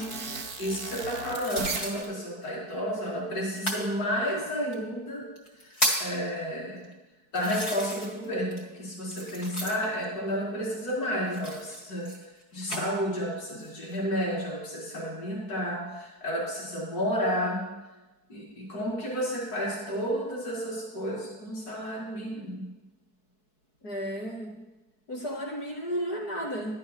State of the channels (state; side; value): late; right; 4.7 ms